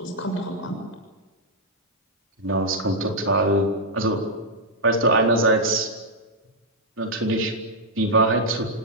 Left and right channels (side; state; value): both; normal; correlation -0.05